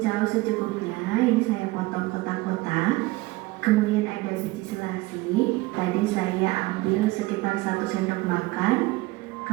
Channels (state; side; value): quieter; left; 20.8 dB